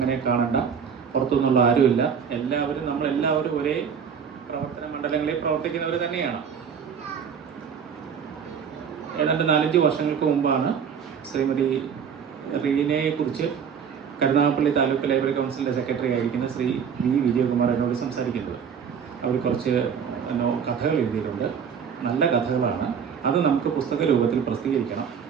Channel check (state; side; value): quieter; left; 7.1 dB